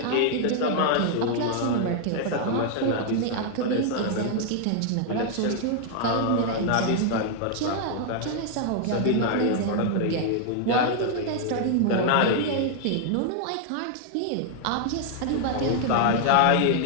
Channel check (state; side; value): different; both; correlation 0.00